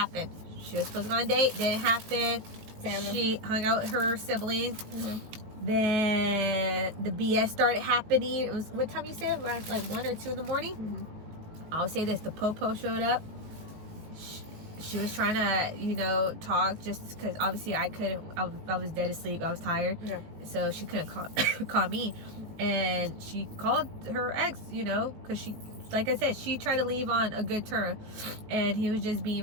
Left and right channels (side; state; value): left; late; 19 ms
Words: She was supposed to go on a date, didn't happen. Family. She hung out with her siblings. Then the BS started happening. It was, what time you said? Around like 1 or 2 in the morning? I would say this, the popo showed up. She was trying to, talk just because obviously I couldn't, I was dead asleep. I was tired. Yeah. So she couldn't call me. And she called her ex, because she, like I said, she tried to leave on a good term. And he was just